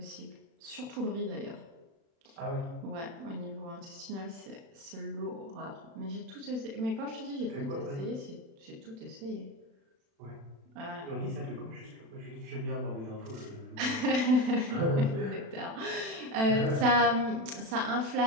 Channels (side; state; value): left; late; 36 ms